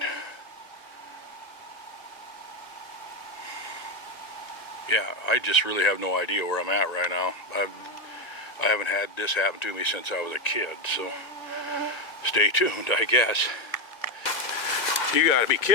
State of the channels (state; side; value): late; right; 1.9 ms